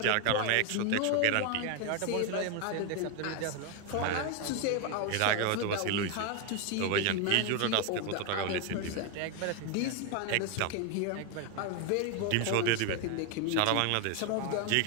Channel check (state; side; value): different; both; correlation 0.01